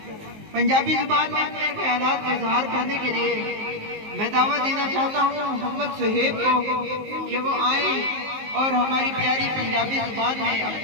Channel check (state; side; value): late; left; 19 ms